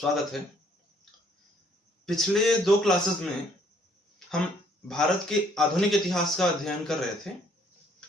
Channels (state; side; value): normal; both; correlation 0.64